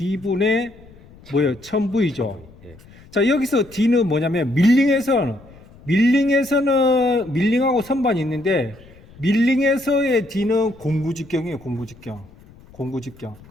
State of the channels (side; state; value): left; noise; rumble, 23 dB below the sound